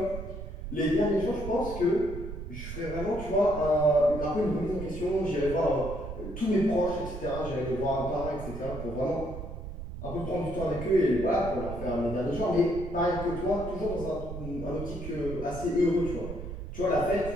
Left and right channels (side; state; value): right; noise; rumble, 8 dB below the sound